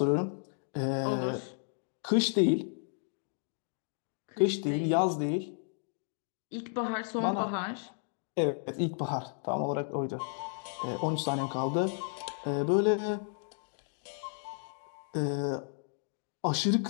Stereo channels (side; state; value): right; silent; 56 dB below the other